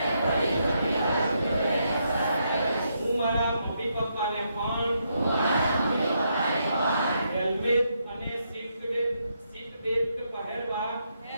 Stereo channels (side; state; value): both; inverted; correlation -0.79